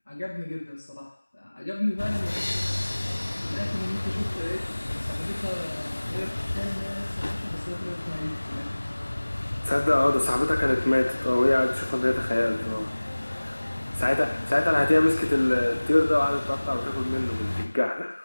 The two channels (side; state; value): both; inverted; correlation -1.00